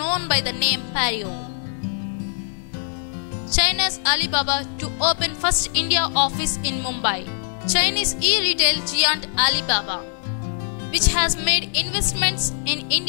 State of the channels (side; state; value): right; silent; digital silence